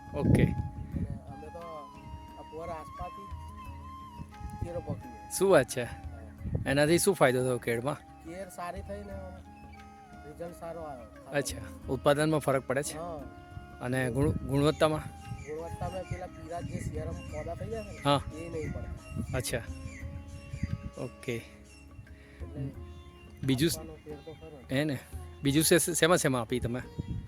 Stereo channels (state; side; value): identical; both; correlation 1.00